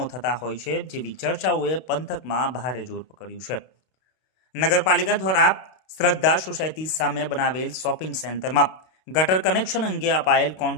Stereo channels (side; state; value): right; late; 32 ms